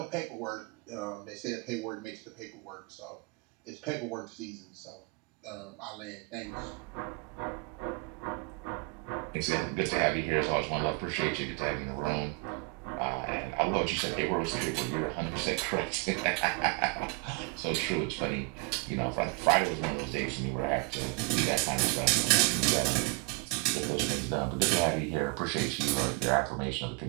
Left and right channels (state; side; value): quieter; left; 29.4 dB